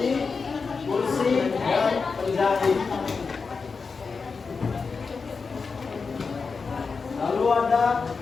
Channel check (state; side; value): quieter; right; 4.9 dB